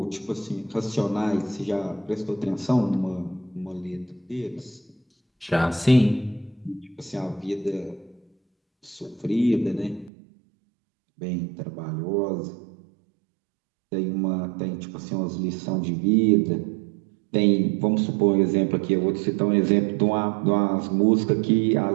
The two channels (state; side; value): drops out; left; at 10.1 s